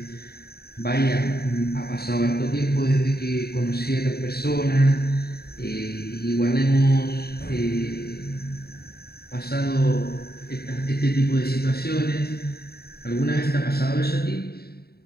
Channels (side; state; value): right; late; 0.46 ms